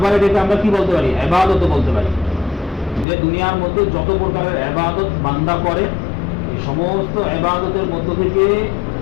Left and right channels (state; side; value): drops out; right; at 3.1 s